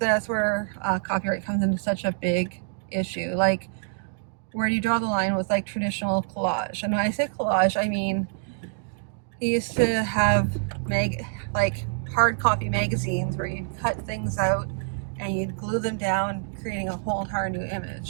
copyright comes into such a big issue. Like, where do you draw the line with, like, traditional collage? And when I say collage, I mean, he used to have hard copy magazines where you'd cut things out and you'd glue them down, creating a whole entire new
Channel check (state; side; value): silent; left; digital silence